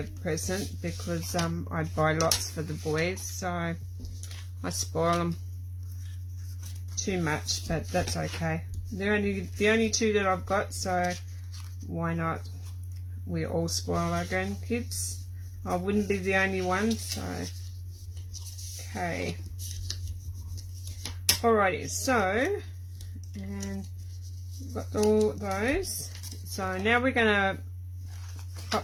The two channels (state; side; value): identical; both; correlation 1.00